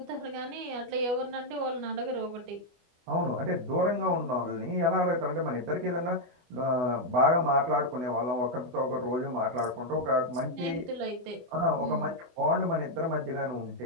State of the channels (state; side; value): late; left; 25 ms